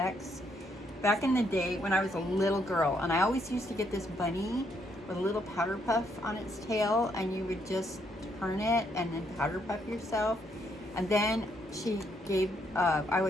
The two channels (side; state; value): both; normal; correlation 0.73